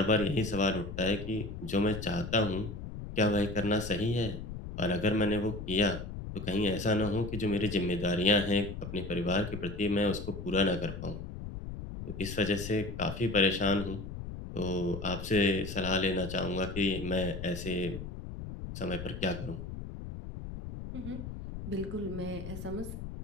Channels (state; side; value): noise; left; rumble, 8 dB below the sound